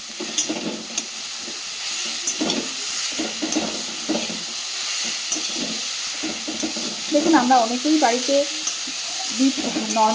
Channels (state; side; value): identical; both; correlation 1.00